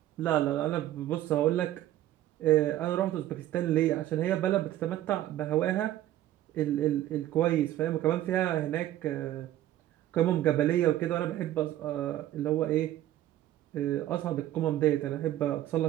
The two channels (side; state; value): left; quieter; 13.4 dB